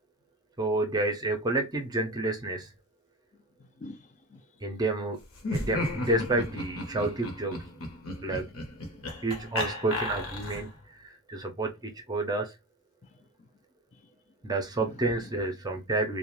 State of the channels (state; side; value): normal; both; correlation 0.27